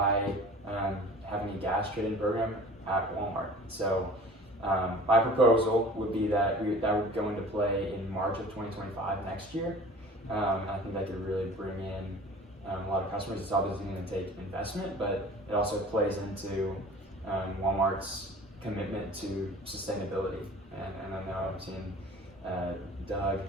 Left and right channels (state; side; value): normal; both; correlation 0.43